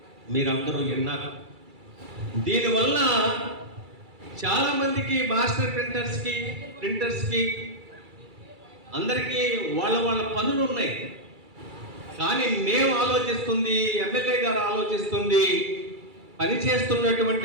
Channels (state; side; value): late; left; 2.3 ms